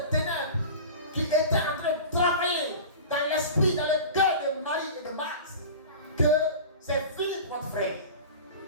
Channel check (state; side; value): inverted; both; correlation -0.34